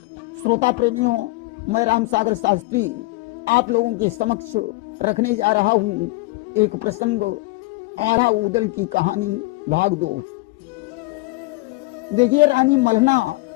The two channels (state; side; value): quieter; right; 22.6 dB